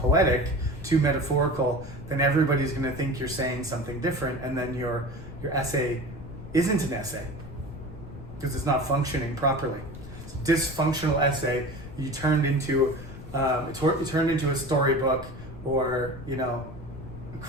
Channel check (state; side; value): noise; left; rumble, 13 dB below the sound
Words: too metaphorical, then everybody's going to think you're saying something different, and then your essay isn't an essay because it's not functioning properly. It's a dysfunctional essay you turned into a storybook, or a